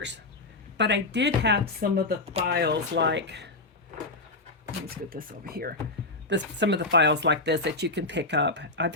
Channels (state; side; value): quieter; right; 3.2 dB